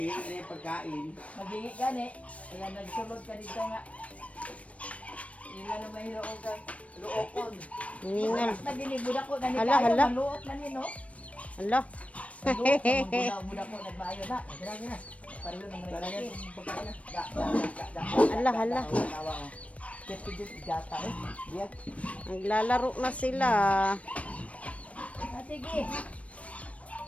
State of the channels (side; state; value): right; late; 0.065 ms